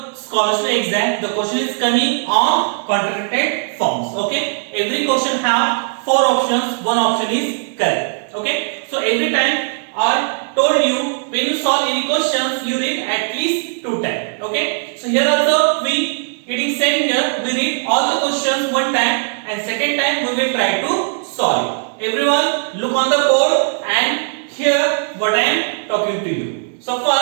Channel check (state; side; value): silent; left; digital silence